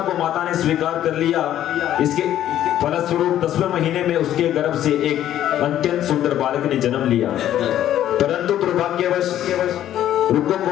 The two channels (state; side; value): quieter; right; 11.8 dB